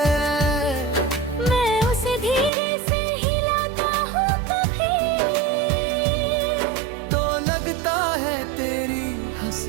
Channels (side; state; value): left; drops out; at 2.5 s